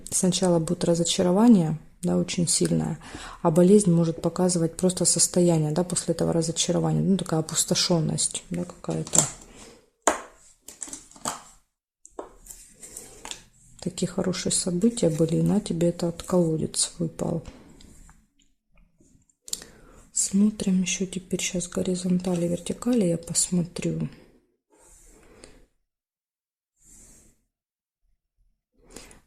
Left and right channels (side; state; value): both; identical; correlation 1.00